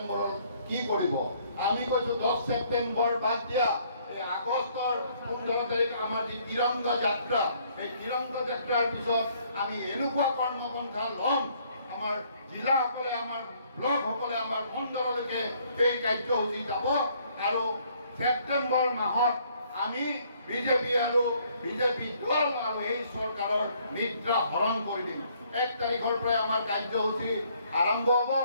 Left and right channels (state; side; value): inverted; both; correlation -0.64